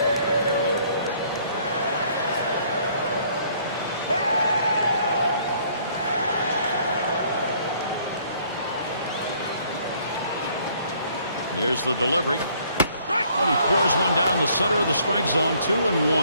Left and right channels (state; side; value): inverted; both; correlation -0.62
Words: Here's the delivery. And he pours one down the center of the strike zone,